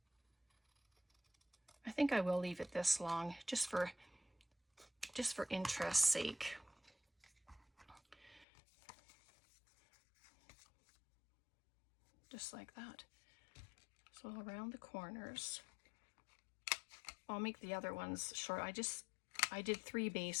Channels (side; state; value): right; drops out; at 8.5 s